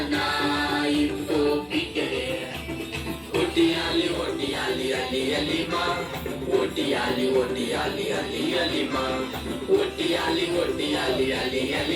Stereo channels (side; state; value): both; identical; correlation 1.00